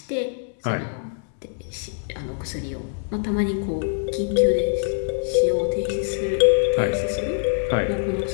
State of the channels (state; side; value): silent; right; 61 dB below the other